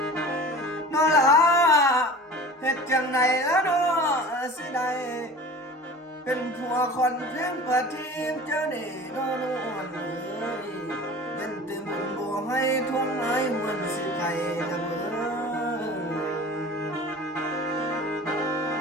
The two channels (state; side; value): normal; both; correlation 0.39